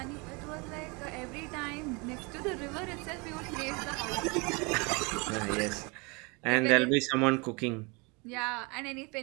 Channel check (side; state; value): left; quieter; 29.0 dB